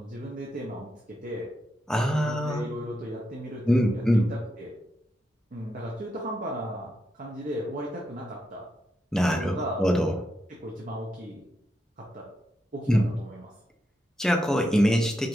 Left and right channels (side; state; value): both; normal; correlation 0.84